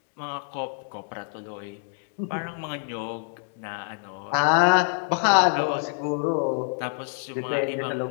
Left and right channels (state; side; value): silent; right; 61 dB below the other